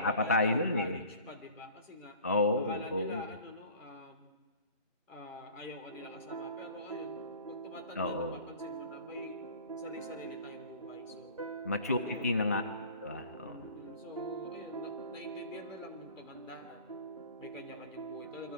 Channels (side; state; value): both; inverted; correlation -0.43